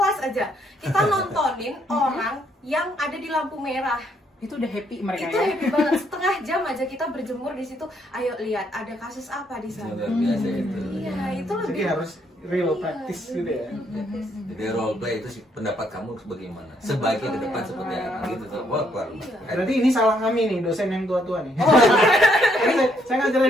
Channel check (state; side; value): normal; both; correlation 0.72